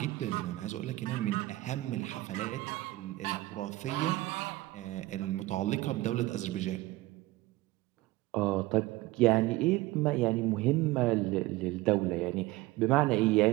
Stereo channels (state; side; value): quieter; left; 18.7 dB